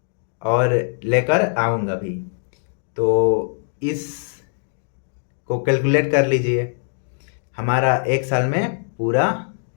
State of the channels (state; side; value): silent; right; 64 dB below the other